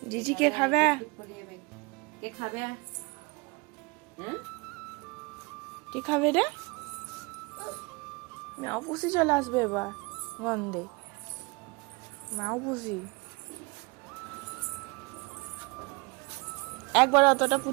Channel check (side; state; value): left; quieter; 27.7 dB